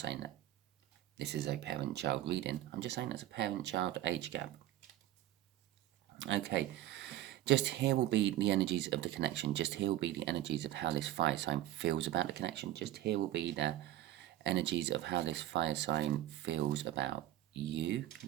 that this is a parent-child reading. I'm just saying it's a parent-child age gap. Okay, just here will be the energies of the connection. Just here will be the energies of how this fire sign feels about the connection. Just here will be the energies of how this fire sign feels about you,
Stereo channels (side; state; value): left; quieter; 14.0 dB